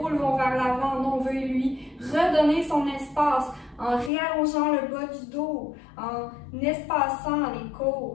vont vers l'avant. Non, on veut lui redonner son espace en réallongeant le bas du dos, en espaçant les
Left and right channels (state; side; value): drops out; right; at 4.1 s